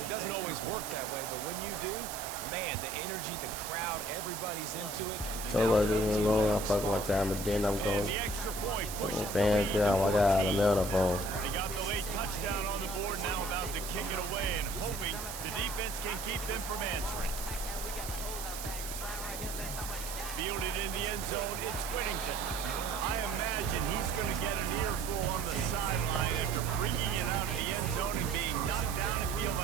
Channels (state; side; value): noise; right; hiss, 8 dB below the sound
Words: It doesn't always work that way, but when you do, man, the energy, the crowd, everybody line, he's into it. So I just alone, I fuck my time, but then I'm going. The extra point pushes the Fans lead down, to I got a 14. mail phone. They got the late touchdown on the board, now about to kick it away and hoping the defense can keep them from answering. Fielded in the end zone, it's Whittington. I imagine he's going to get an earful on the sideline after bringing it out of the end zone and being knocked down at the